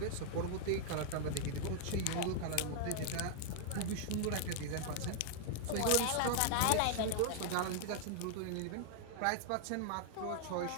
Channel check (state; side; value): different; both; correlation 0.00